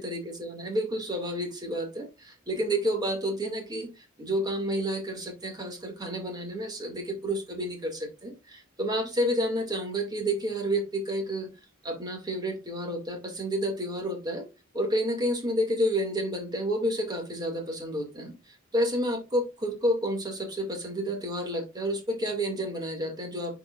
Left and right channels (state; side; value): normal; both; correlation 0.48